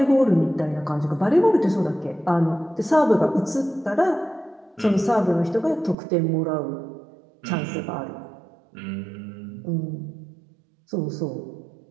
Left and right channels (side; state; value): left; drops out; at 6.0 s